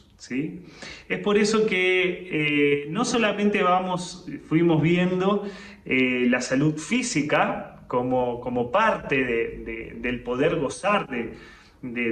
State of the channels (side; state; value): both; identical; correlation 1.00